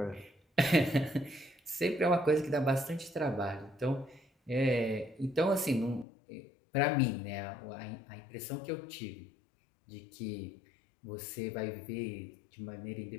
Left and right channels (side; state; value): right; drops out; at 6.1 s